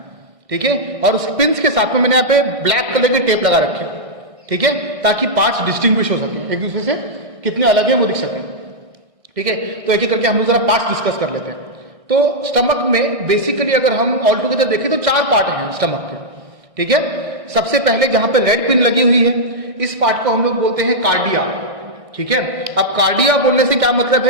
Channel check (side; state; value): left; late; 1.6 ms